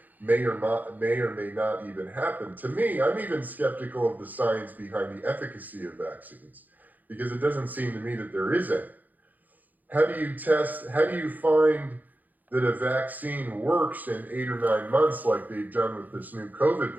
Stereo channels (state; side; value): late; left; 0.083 ms